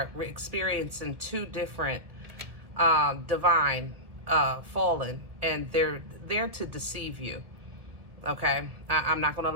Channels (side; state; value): left; late; 1.7 ms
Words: experiencing two different divine fallen, and they're there to deceive you. Okay, I'm not gonna